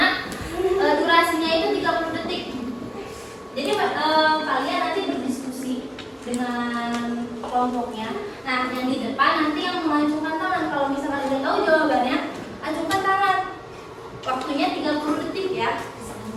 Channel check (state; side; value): identical; both; correlation 1.00